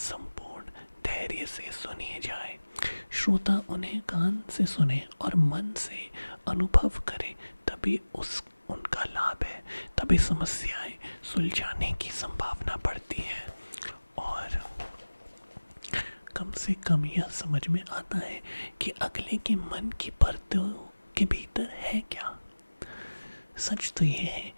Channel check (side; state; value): both; inverted; correlation -1.00